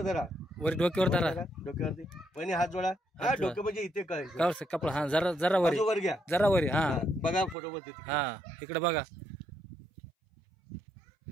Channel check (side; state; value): left; drops out; at 7.6 s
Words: धरा वर डोक्यावर धरा डोक्यावरती पण हात जोडा हा डोकं म्हणजे इथे काय कपडा हा जरा वर घ्या जरा वर हा बघा फोटो मध्ये हा इकडे बघा